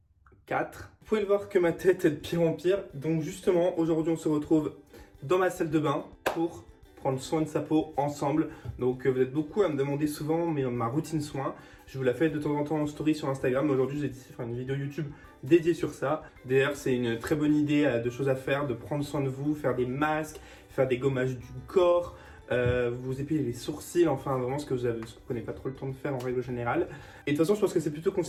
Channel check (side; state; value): both; identical; correlation 1.00